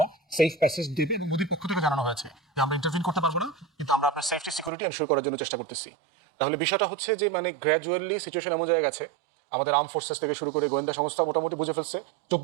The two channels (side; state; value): left; drops out; at 4.7 s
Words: সেফ প্যাসেজ দেবে। এবং মোদির পক্ষ থেকে জানানো হয়েছে যে আমরা ইন্টারভিন করতে পারবো না, কিন্তু আমরা আপনার সেফটি সিকিউরিটি এনশিওর করার জন্য চেষ্টা করতেছি। তাহলে বিষয়টা হচ্ছে যে মানে গ্র্যাজুয়ালি সিচুয়েশন এমন জায়গায় গেছে, আমাদের আর্ম ফোর্সেস থেকে শুরু করে গোয়েন্দা সংস্থা মোটামুটি বুঝে ফেলছে